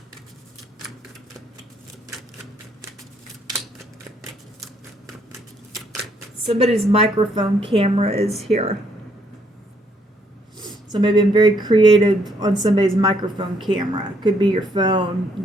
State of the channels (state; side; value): normal; both; correlation 0.70